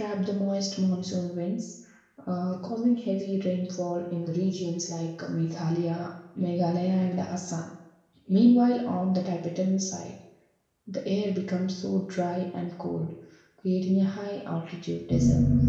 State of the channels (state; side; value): identical; both; correlation 1.00